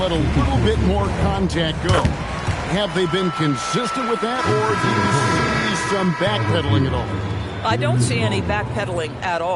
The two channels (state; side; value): identical; both; correlation 1.00